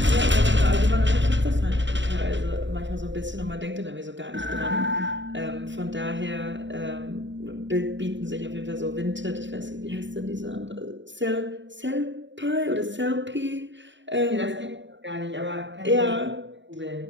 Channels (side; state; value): left; late; 0.54 ms